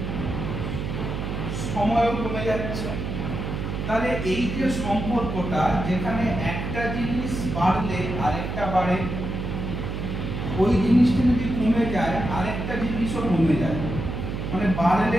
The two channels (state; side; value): noise; right; hum, 4 dB below the sound